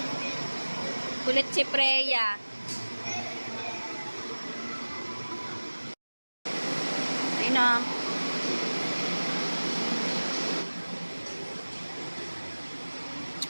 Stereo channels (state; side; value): inverted; both; correlation -1.00